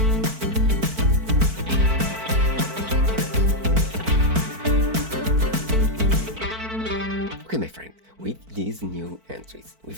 Okay, my friend, with these new entries,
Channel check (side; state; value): left; late; 4.5 ms